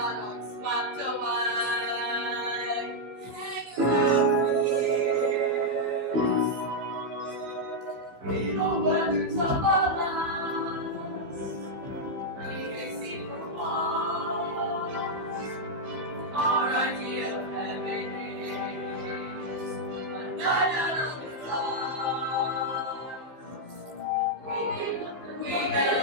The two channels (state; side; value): late; left; 15 ms